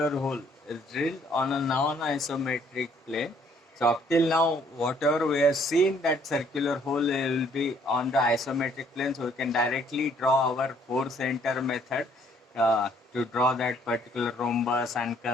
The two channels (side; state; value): both; normal; correlation 0.63